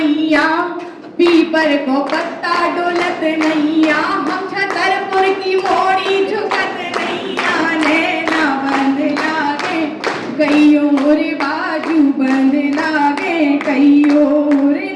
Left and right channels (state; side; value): identical; both; correlation 1.00